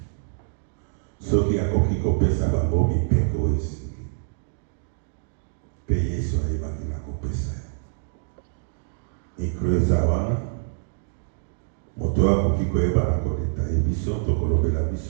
soki akoki kopesa bango mibeko oyo esengi, mpe Yesu ayebaki na kopesa ya. Mikro eza wana moto akoki koyeba na kodetaye biso tokolobela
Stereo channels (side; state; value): left; silent; digital silence